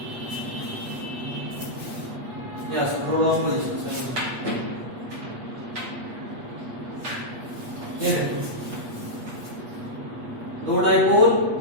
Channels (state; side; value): late; left; 8.3 ms